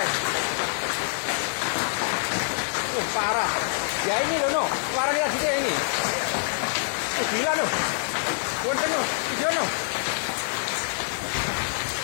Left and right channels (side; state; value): right; silent; digital silence